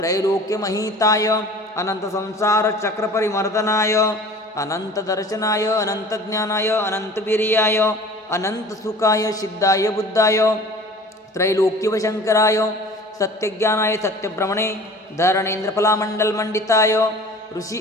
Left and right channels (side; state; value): both; normal; correlation 0.44